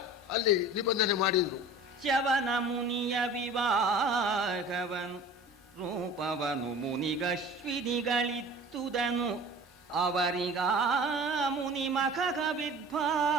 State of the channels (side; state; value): both; normal; correlation 0.41